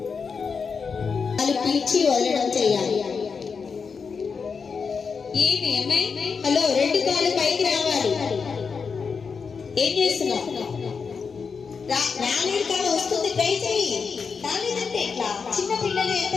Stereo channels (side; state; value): right; quieter; 5.5 dB